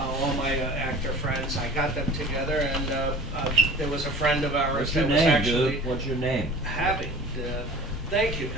my actor friends, I got them together, and there was a friend of ours What's your that was name, actually dude? What's your name? having. Thank you,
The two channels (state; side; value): noise; right; hum, 20 dB below the sound